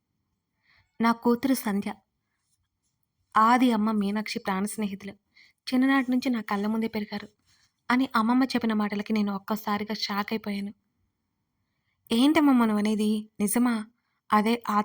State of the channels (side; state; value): both; identical; correlation 1.00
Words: నా కూతురు సంధ్య, ఆది అమ్మ మీనాక్షి ప్రాణ స్నేహితులు. చిన్ననాటి నుంచి నా కళ్ళ ముందే పెరిగారు అని అమ్మమ్మ చెప్పిన మాటలకి నేను ఒక్కసారిగా షాక్ అయిపోయాను. ఏంటమ్మమ్మ నువ్వనేది? నిజమా? అదే